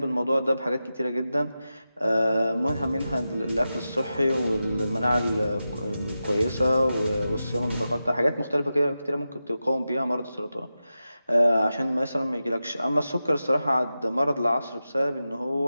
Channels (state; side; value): inverted; both; correlation -0.92